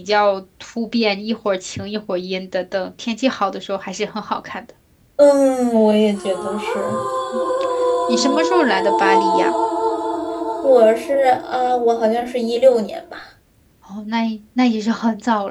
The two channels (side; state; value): both; identical; correlation 1.00